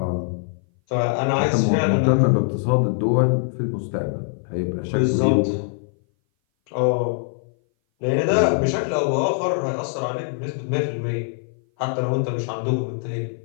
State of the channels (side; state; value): right; silent; 58 dB below the other